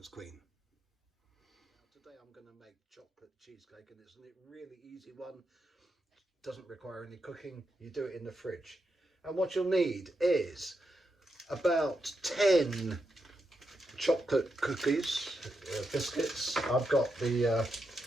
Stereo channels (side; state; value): both; normal; correlation 0.85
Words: Queen. Now, today I'm going to make chocolate cheesecake, and it's a really easy one. Doesn't require any cooking. You do it in the fridge. And what you'll need is about 10 chocolate cookies, biscuits. I've got the